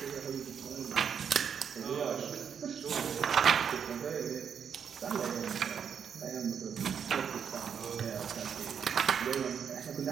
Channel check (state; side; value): quieter; left; 7.4 dB